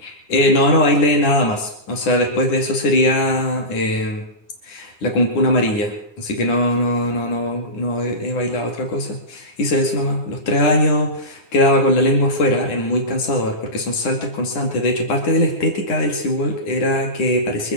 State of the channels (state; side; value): late; right; 9.9 ms